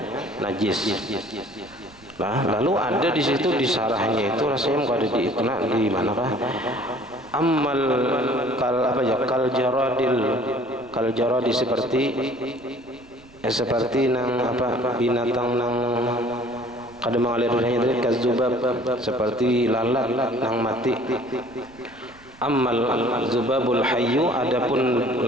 najis. Nah, lalu ada di situ di sarahnya itu rasanya kada diikna di manakah? Ammal kal jaradi seperti nang binatang nang kada mengalir darahnya itu kazubab, seperti lalat nang mati. Ammal zubabul hayyu, adapun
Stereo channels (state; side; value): noise; right; rumble, 26 dB below the sound